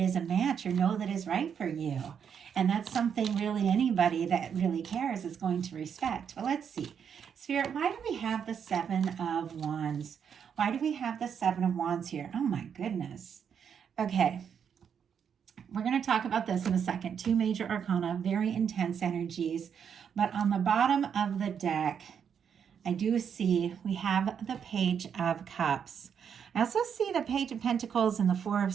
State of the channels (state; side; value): quieter; left; 7.6 dB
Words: a match, or that is right for you. And that's something really anybody that really cares is going to respect. But let's see. Spirit, why do we have the Seven of Wands? Why do we have the Seven of Wands here? Oh my goodness. Okay. We're going to talk about this in a second. Two major arcana, very intense energies. But on the bottom of the deck, I do see we have the Page of Cups. I also see the Page of Pentacles and the Four of